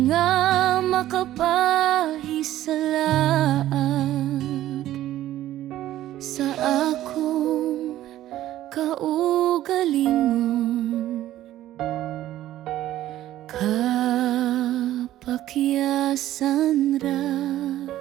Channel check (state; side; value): quieter; left; 13.7 dB